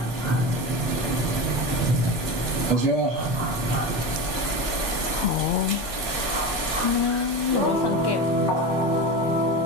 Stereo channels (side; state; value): both; normal; correlation 0.24